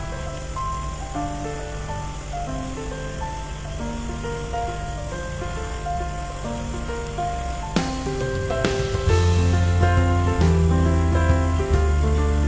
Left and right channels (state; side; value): identical; both; correlation 1.00